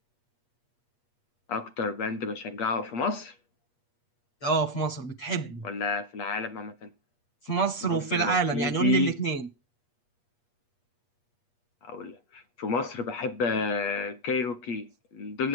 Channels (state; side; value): late; right; 8.4 ms